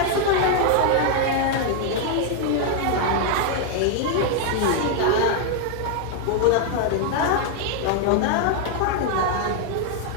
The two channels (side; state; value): both; different; correlation 0.00